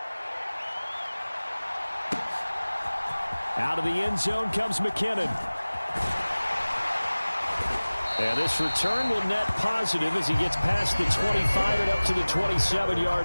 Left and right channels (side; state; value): both; inverted; correlation -1.00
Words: Out of the end zone comes McKinnon. And this return will net positive as he gets past the 25 and up to the